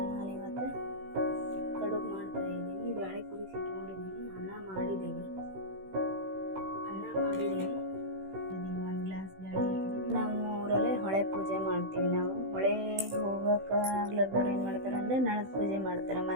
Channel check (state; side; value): late; left; 16 ms